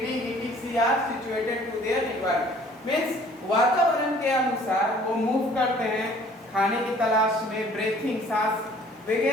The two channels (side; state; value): both; normal; correlation 0.54